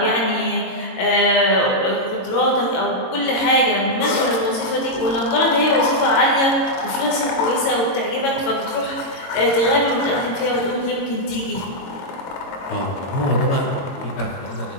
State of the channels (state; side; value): late; right; 22 ms